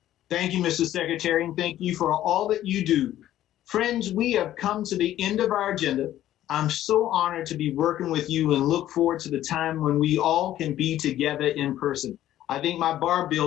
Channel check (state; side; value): quieter; right; 13.0 dB